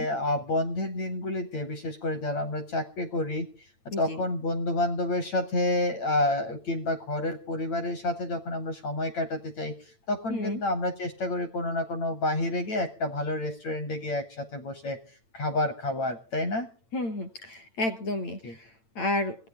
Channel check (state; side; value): late; right; 8.8 ms